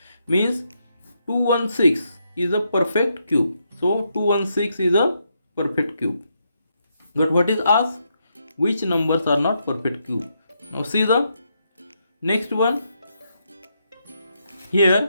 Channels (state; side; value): inverted; both; correlation -0.79